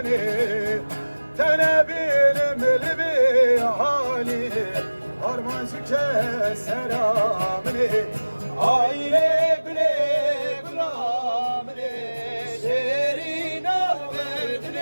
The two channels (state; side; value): inverted; both; correlation -1.00